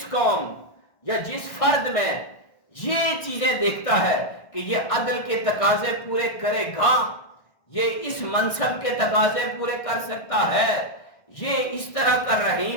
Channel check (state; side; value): late; right; 1.6 ms